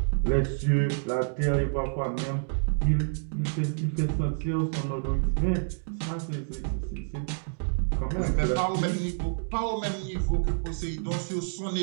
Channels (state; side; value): silent; left; digital silence